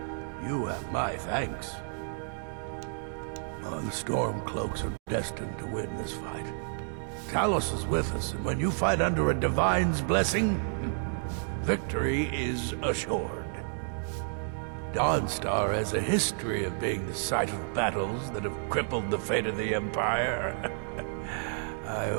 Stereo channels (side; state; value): left; silent; digital silence